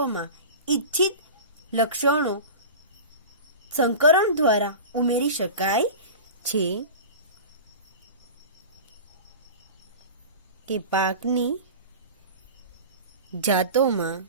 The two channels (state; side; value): inverted; both; correlation -0.33